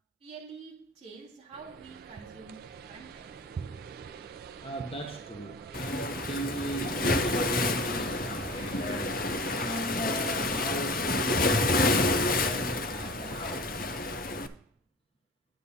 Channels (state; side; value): normal; both; correlation 0.39